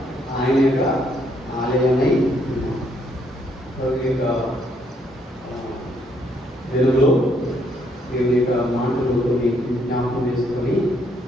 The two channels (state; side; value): normal; both; correlation 0.71